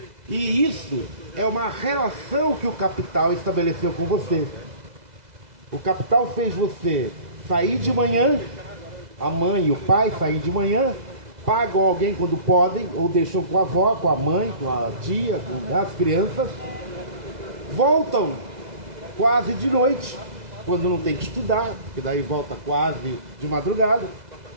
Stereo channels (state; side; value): late; left; 2.0 ms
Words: E isso é uma relação que o capital estabeleceu com você. O capital fez você sair de manhã, a mãe e o pai saem de manhã, pagam alguém quando podem, ou deixam com a avó, com a mãe, com a tia, com as crianças, voltam quase de noite, quando não tem que estudar, que daí volta quase de madrugada,